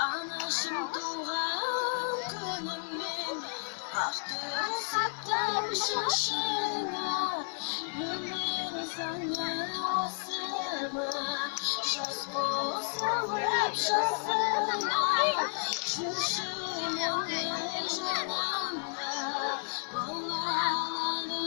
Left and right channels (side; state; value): right; silent; digital silence